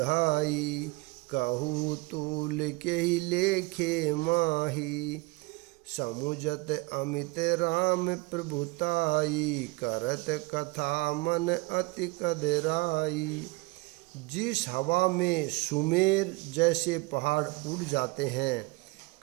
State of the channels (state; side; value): quieter; left; 24.3 dB